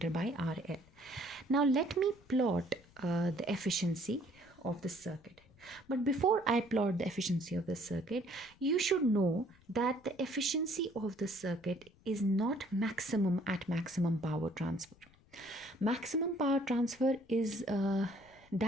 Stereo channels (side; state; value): left; noise; rumble, 27 dB below the sound